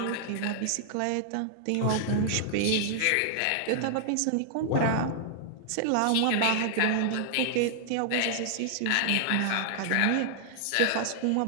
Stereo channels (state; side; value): different; both; correlation -0.01